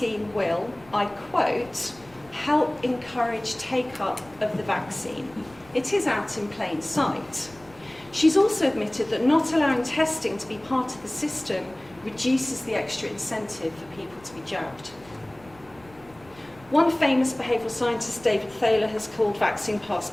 will, I quote, help encourage take-up of the vaccine. It is out in plain sight. She's also admitted that not allowing testing to be part of the system reduces the extra incentive for people to be jabbed. One famous behavioural scientist, David Thaler, has called vaccine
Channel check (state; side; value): noise; left; rumble, 25 dB below the sound